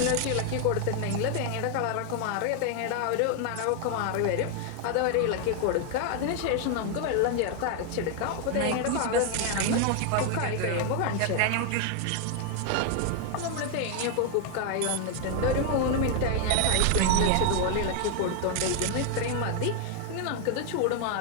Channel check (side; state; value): both; different; correlation 0.00